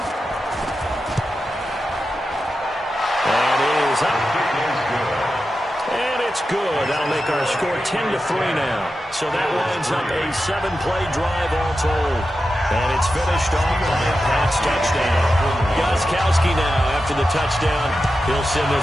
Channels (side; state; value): both; normal; correlation 0.91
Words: And it is up. And it's good. That'll make our score 10-3 now. So that lines up a 7-play drive all told. And it's finished off by a pass touchdown. Gostkowski now, after the touchdown, he'll send